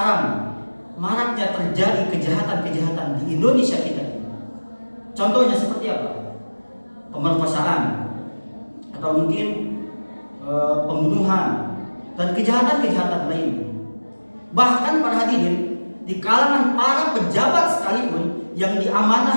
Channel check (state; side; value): inverted; both; correlation -1.00